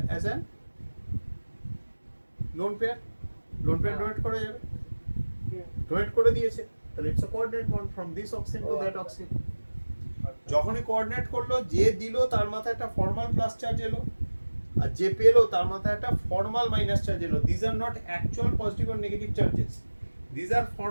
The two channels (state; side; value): inverted; both; correlation -1.00